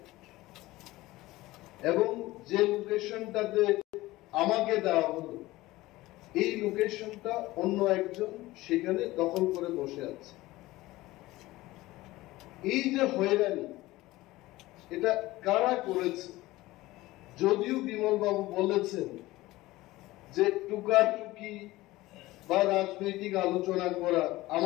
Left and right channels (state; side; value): quieter; right; 18.4 dB